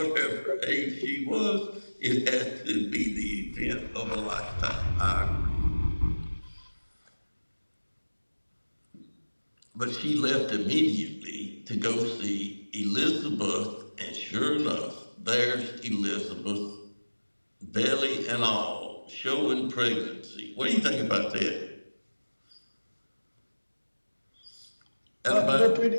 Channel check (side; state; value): both; inverted; correlation -1.00